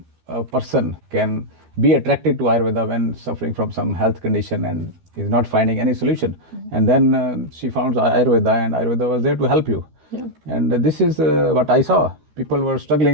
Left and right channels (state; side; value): late; left; 12 ms